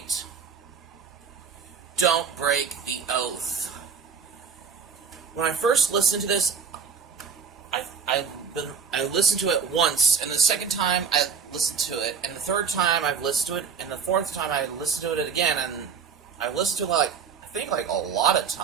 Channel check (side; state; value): left; quieter; 6.2 dB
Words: Don't Break the Oath. When I first listened to this, I listened to it once, and the second time I listened to it, and the third time I've listened to it, and the fourth time I listened to it again, and I've listened to it like a lot of